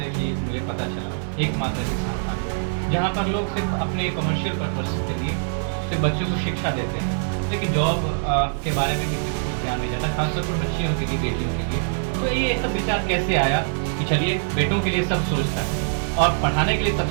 कि मुझे पता चला, एकमात्र संस्थान जहाँ पर लोग सिर्फ अपने कमर्शियल पर्पस के लिए सिर्फ बच्चों को शिक्षा देते हैं, लेकिन जॉब के बारे में किसी को कुछ ध्यान नहीं जाता, खासतौर पर बच्चियों के लिए, बेटियों के लिए। तो ये सब विचार कैसे आया कि चलिए बेटों के लिए सब सोचता है और पढ़ाने के लिए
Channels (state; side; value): silent; left; digital silence